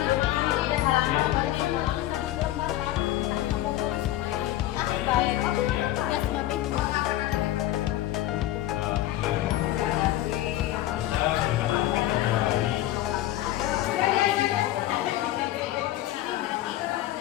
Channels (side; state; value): right; quieter; 14.6 dB